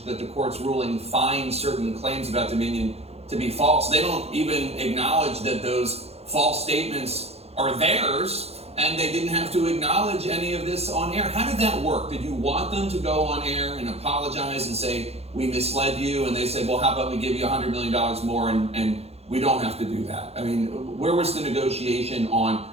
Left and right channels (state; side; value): late; left; 0.30 ms